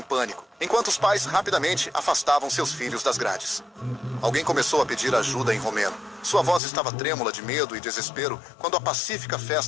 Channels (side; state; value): right; drops out; at 6.6 s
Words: pânico, enquanto os pais rapidamente afastavam seus filhos das grades. Alguém começou a pedir ajuda em romeno. Sua voz estava trêmula de medo e desespero quando a pacífica